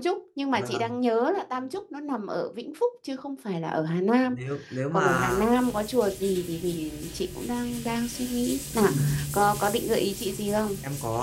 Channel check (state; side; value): identical; both; correlation 1.00